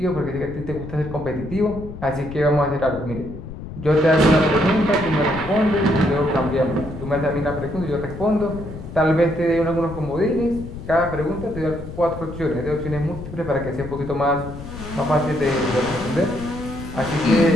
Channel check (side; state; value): left; noise; rumble, 11 dB below the sound